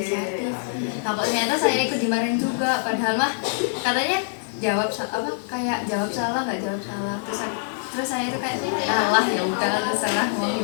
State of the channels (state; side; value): silent; right; digital silence